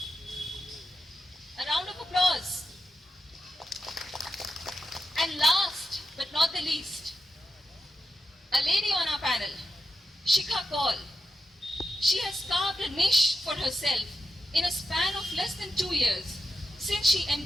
A round of applause. And last but not the least, a lady on our panel, Shikha Kaul. She has carved a niche for herself in a span of less than 2 years since she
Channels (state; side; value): normal; both; correlation 0.89